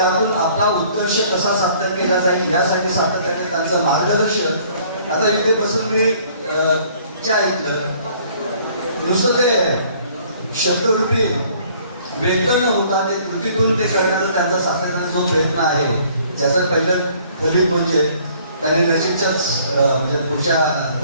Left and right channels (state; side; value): inverted; both; correlation -0.58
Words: आपला उत्कर्ष कसा साध्य केला जाईल यासाठी सातत्याने त्यांचं मार्गदर्शन. आता इथे बसून मी जे ऐकलं नुसतं ते शब्दरूपी वेतन होता ते कृतीतून ते करण्याचा त्यांचा सातत्याने जो प्रयत्न आहे त्याचं पहिलं फलित म्हणजे त्यांनी नजीकच्याच म्हणजे पुढच्या